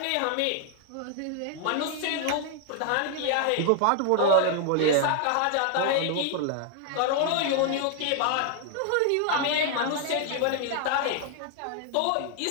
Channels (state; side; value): different; both; correlation 0.00